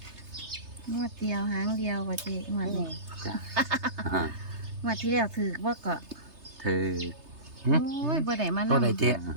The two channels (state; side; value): late; left; 3.3 ms